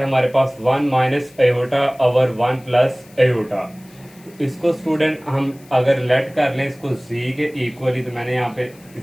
हमारे पास 1 minus aorta over 1 plus aorta. इसको स्टूडेंट हम अगर लेट कर लें इसको जी के इक्वली, तो मैंने यहाँ पे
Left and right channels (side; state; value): left; noise; hiss, 27 dB below the sound